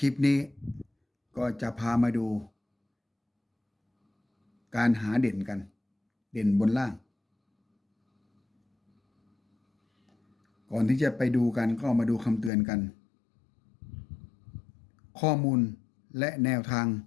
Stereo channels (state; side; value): drops out; right; at 12.5 s